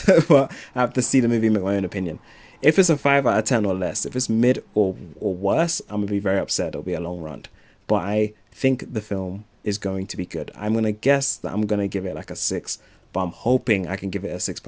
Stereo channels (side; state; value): both; identical; correlation 1.00